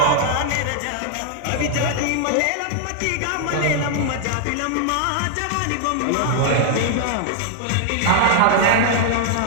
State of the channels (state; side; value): different; both; correlation -0.01